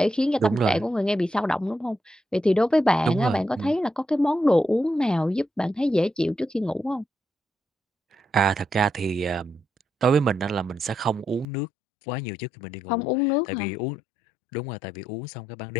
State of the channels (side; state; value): right; drops out; at 11.5 s